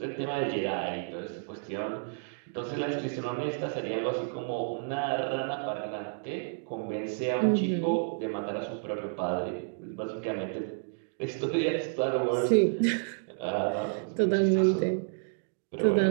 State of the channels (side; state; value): left; silent; digital silence